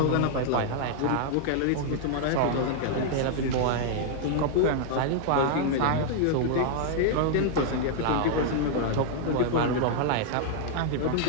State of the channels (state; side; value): different; both; correlation -0.01